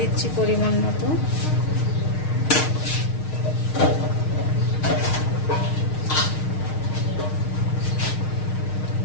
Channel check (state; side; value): late; right; 6.5 ms